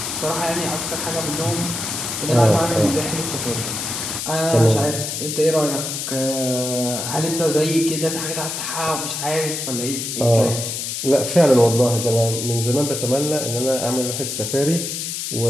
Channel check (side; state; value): left; noise; hiss, 4 dB below the sound